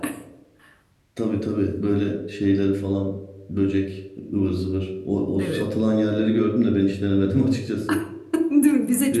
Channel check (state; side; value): identical; both; correlation 1.00